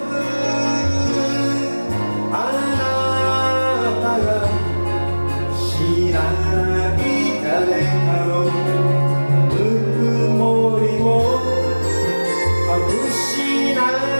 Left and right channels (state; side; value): inverted; both; correlation -1.00